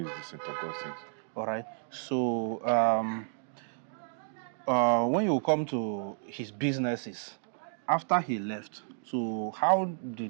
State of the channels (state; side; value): silent; left; digital silence